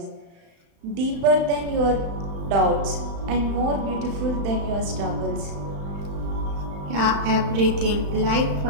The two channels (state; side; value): late; left; 35 ms